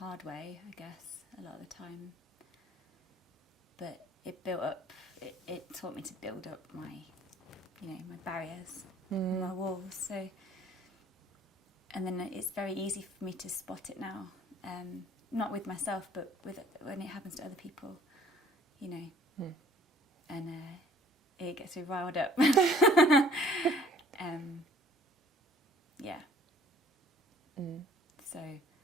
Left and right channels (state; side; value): normal; both; correlation 0.55